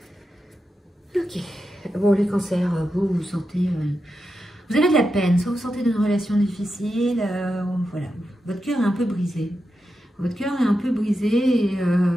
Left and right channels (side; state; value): both; normal; correlation 0.88